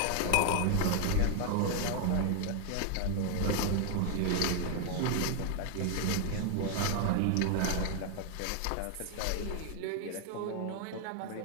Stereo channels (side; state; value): both; different; correlation 0.00